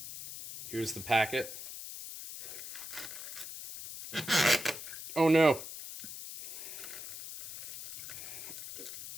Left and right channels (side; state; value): left; noise; hiss, 10 dB below the sound